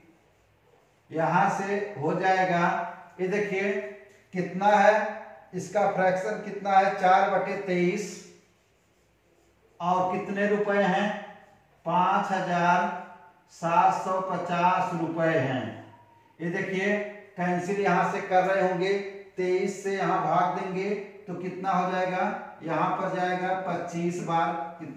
यहां से हो जाएगा। ये देखिए कितना है, इसका फ्रैक्शन कितना है 4/23 और कितने रुपए हैं 5,750 रुपए हैं। ये देखिए कैंसिल यहां से कर रहे होंगे, 23 से यहां भाग देंगे तो कितना हो जाएगा, यहाँ पर जाएगा 25 बार,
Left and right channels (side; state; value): both; identical; correlation 1.00